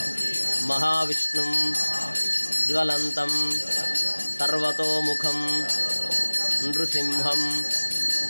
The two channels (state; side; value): inverted; both; correlation -1.00